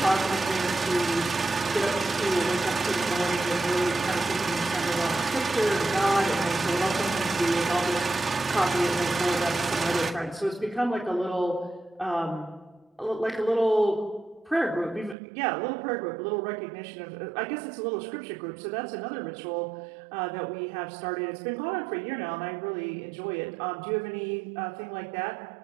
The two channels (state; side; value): drops out; left; at 15.2 s